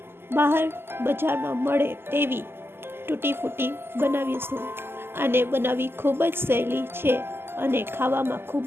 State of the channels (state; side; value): late; left; 0.11 ms